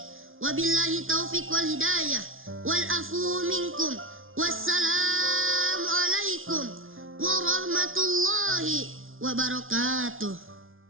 Wabillahi taufiq wal hidayah. Wal afu minkum. Wassalamu alaikum warahmatullahi wabarakatuh.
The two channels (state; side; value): late; left; 0.59 ms